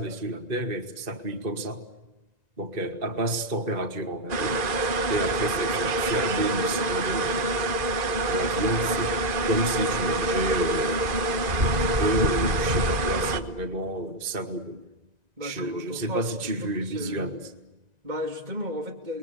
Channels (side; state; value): left; late; 1.9 ms